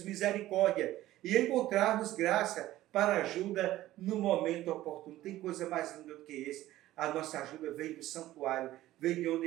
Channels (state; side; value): quieter; left; 15.2 dB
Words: misericórdia e encontrarmos graça para ajuda no momento oportuno. Tem coisa mais linda do que esse? A nossa ajuda vem do santuário, vem de